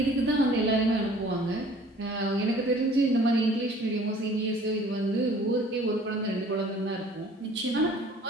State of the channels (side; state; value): both; normal; correlation 0.52